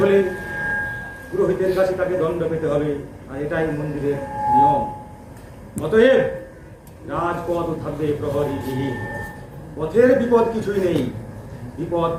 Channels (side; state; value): both; identical; correlation 1.00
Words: হলে পুরোহিতের কাছে তাকে দণ্ড পেতে হবে, আর এটাই মন্দিরের নিয়ম। অতএব রাজপথ থাকবে প্রহরীবিহীন। পথের বিপদ কিছুই নেই, বিপদ